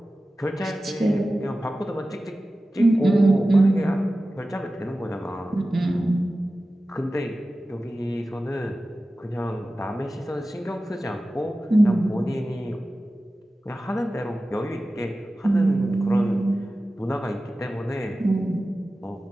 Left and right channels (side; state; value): both; normal; correlation 0.95